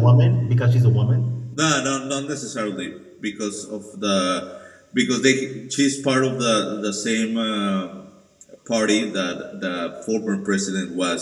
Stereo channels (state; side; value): identical; both; correlation 1.00